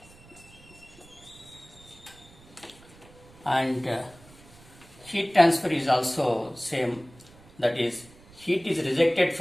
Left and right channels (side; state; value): right; noise; rumble, 24 dB below the sound